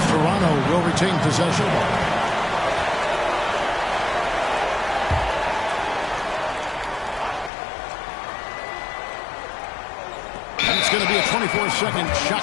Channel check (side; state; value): right; drops out; at 7.5 s